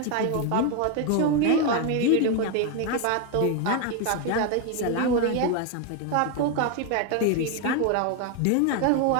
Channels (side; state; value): both; different; correlation 0.01